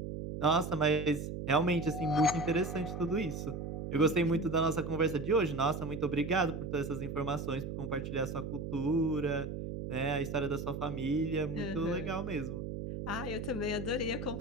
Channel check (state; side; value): noise; right; hum, 6 dB below the sound